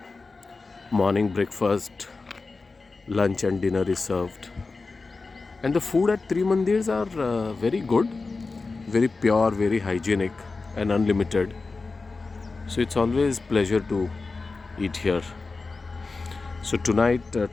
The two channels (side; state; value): right; quieter; 4.0 dB